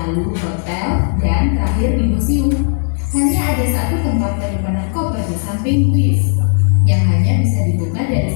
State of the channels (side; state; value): right; silent; 62 dB below the other